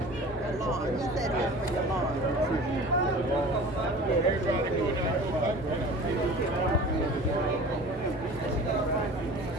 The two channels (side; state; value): both; normal; correlation 0.40